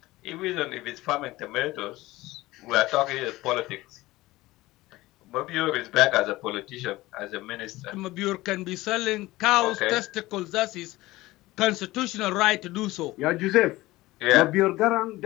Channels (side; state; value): right; quieter; 18.7 dB